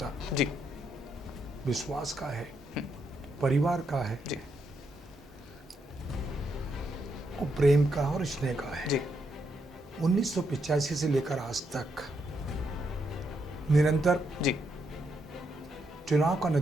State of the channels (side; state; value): both; normal; correlation 0.79